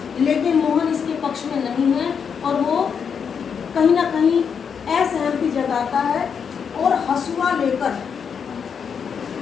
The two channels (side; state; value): right; quieter; 6.8 dB